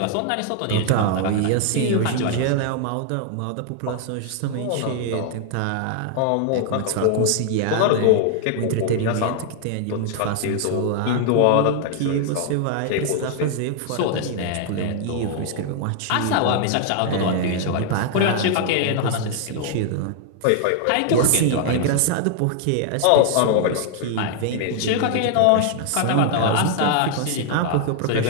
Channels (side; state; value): both; different; correlation 0.00